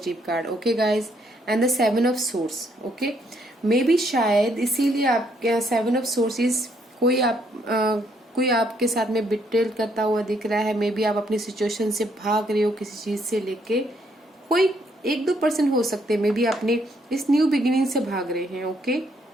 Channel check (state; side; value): normal; both; correlation 0.71